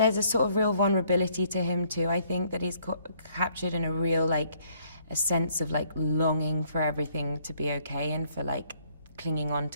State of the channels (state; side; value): inverted; both; correlation -0.67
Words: a sort of real vulnerability to him too. I think that he's captured in a real, like, a sense of like longing for everything to be okay, and for like clinging on